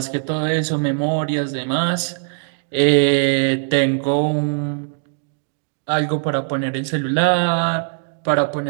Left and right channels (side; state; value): left; silent; digital silence